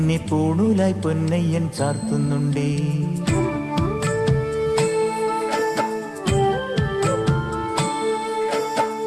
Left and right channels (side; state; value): both; identical; correlation 1.00